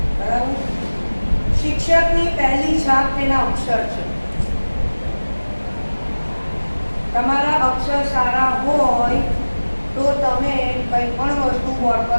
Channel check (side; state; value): both; inverted; correlation -1.00